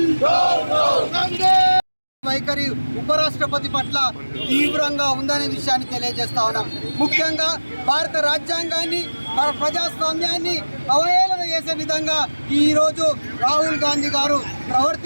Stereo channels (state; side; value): inverted; both; correlation -1.00